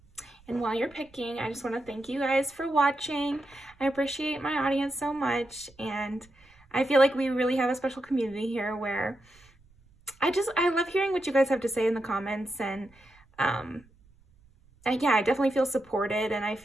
And while you're picking, I just want to thank you guys for watching. I appreciate my audience so much, and I feel like we really have a special community here where I love hearing what you guys have to say in the comments, and yeah, I definitely feel supported, and I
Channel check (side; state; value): right; noise; rumble, 30 dB below the sound